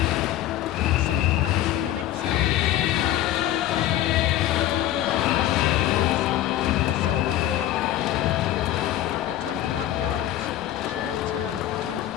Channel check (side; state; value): right; quieter; 13.3 dB